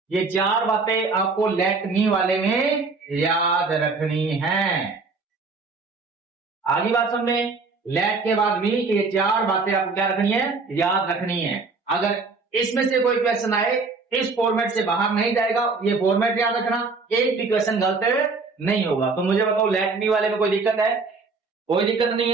ये चार बातें आपको लेट मी वाले में याद रखनी है। आगे बात समझे, लेट के बाद भी ये चार बातें आपको क्या रखनी है, याद रखनी है। अगर इसमें से कोई क्वेश्चन आए इस फॉर्मेट से बाहर नहीं जाएगा, ये फॉर्मेट याद रखना, एक भी क्वेश्चन गलत नहीं होगा। तो मुझे बताओ लेट मी वाले में कोई दिक्कत है, कोई दिक्कत नहीं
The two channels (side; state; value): left; quieter; 4.2 dB